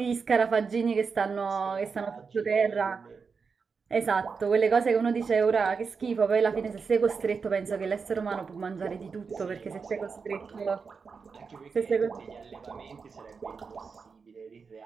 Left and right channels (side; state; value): left; quieter; 5.3 dB